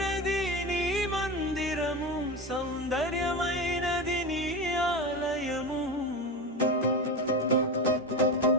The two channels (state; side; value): normal; both; correlation 0.22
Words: నీ మందిరము, సౌందర్యమైనది నీ ఆలయము.